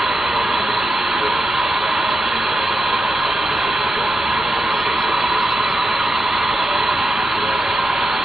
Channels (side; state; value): both; normal; correlation 0.88